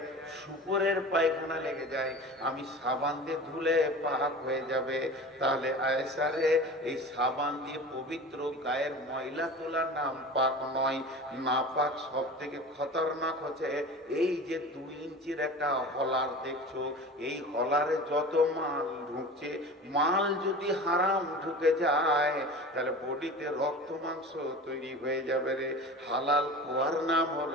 শুকরের পায়খানা লেগে যায়, আমি সাবান দিয়ে ধুলে পাক হয়ে যাবে। তাহলে আয়েশা রে, এই সাবান দিয়ে পবিত্র গায়ের ময়লা তোলার নাম পাক নয়। না পাক সব থেকে খতরনাক হচ্ছে এই যে 2 ইঞ্চির একটা হলার দেখছো, এই হলারে যত মাল ঢুকছে, মাল যদি হারাম ঢুকে যায় তাহলে বডিতে রক্ত মাংস তৈরি হয়ে যাবে রে। হালাল খোয়ার নাম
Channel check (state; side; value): normal; both; correlation 0.35